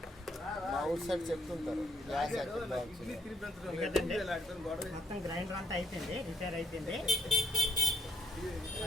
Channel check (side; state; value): both; normal; correlation 0.71